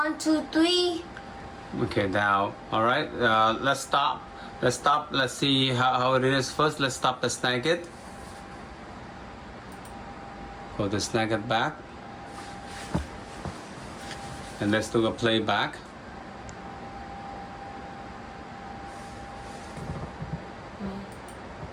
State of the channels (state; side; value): identical; both; correlation 1.00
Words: 2, 3. Okay. Now. All right. Let's stop. Let's see how it is first. Let's stop the Snagit. Go to Snagit back. And let's do a playback.